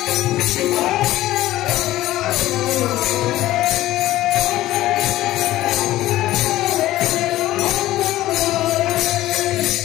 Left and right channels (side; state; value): right; quieter; 15.4 dB